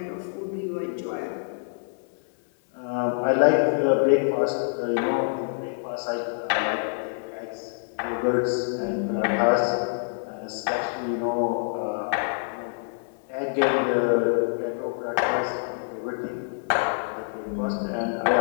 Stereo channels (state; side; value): silent; right; digital silence